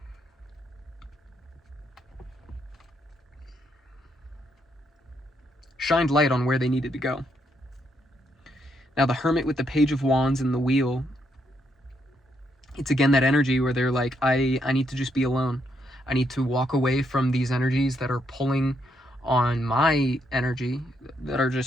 shined light on where they needed to go. Now the Hermit with the Page of Wands and the Wheel, it's again that energy where they're like, I need to just be alone. I need to walk away from these energies that are pulling on my energy, that are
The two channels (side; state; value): both; normal; correlation 0.77